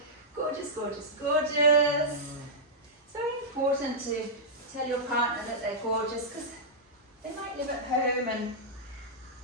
gorgeous, gorgeous, gorgeous. It's very important to tell your partner that they're gorgeous, because they might live at home and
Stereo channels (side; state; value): both; normal; correlation -0.11